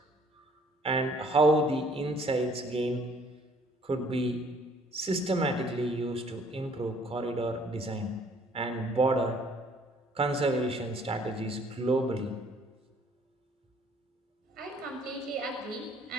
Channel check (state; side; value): normal; both; correlation 0.60